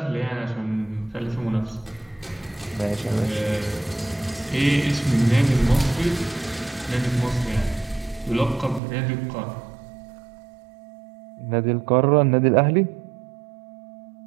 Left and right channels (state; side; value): drops out; left; at 8.8 s